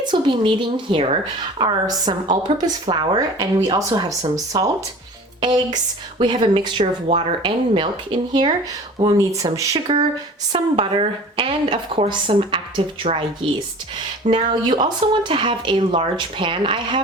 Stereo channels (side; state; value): both; normal; correlation 0.41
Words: we'll be needing here are some all-purpose flour, and we also have some salt, eggs, we have a mixture of water and milk in here. We'll need some sugar, some butter, and of course some active dry yeast. Now you also want to have a large pan. I